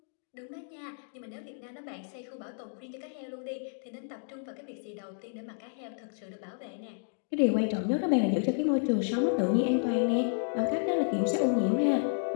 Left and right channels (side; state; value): right; silent; digital silence